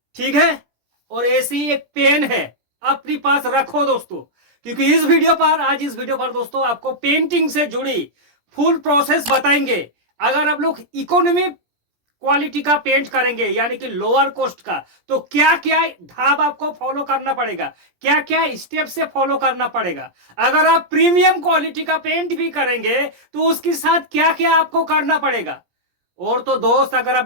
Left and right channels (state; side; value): late; left; 17 ms